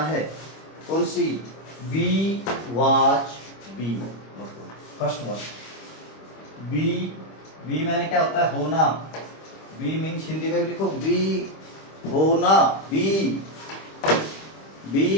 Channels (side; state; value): right; late; 26 ms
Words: है। कौन सी? Be, watch, be. First verb be. Be मैंने क्या होता है? होना। बी मीन्स हिंदी में लिखो बी, होना। Be,